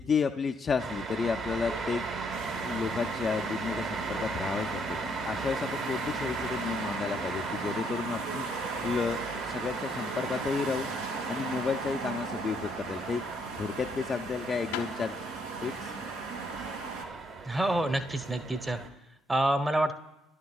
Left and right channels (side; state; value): both; normal; correlation 0.71